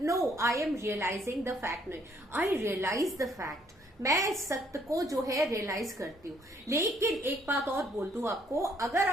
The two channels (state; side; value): normal; both; correlation 0.66